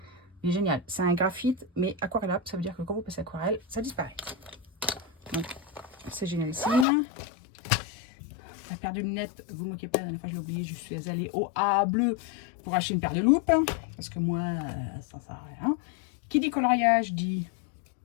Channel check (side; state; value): right; drops out; at 6.9 s